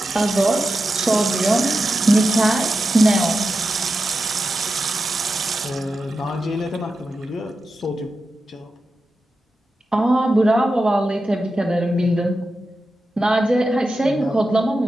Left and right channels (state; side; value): normal; both; correlation 0.90